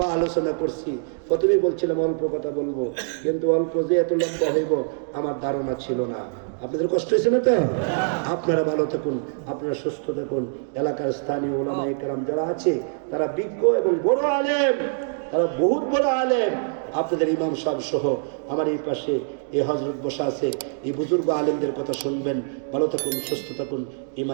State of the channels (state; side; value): silent; left; digital silence